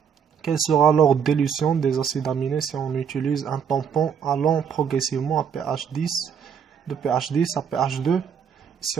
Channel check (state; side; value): quieter; left; 7.4 dB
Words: Quel sera l'ordre d'élution des acides aminés si on utilise un tampon allant progressivement à pH 10, de pH 10 à pH 2?